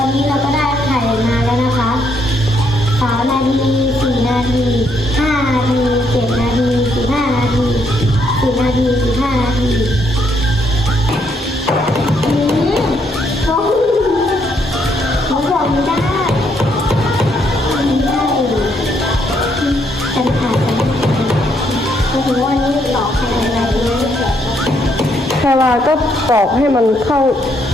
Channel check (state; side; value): normal; both; correlation 0.73